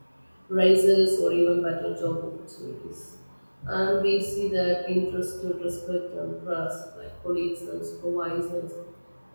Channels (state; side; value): inverted; both; correlation -1.00